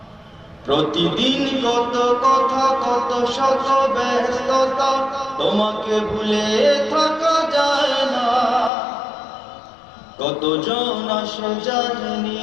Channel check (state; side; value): drops out; right; at 8.7 s